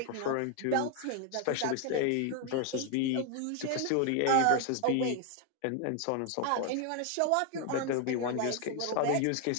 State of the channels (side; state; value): both; different; correlation 0.00